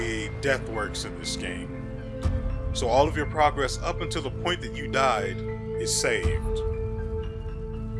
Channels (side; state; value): both; identical; correlation 1.00